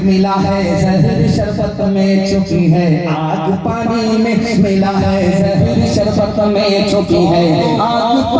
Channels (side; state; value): both; identical; correlation 1.00